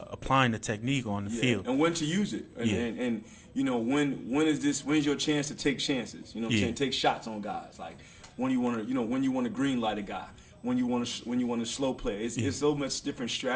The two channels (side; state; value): both; identical; correlation 1.00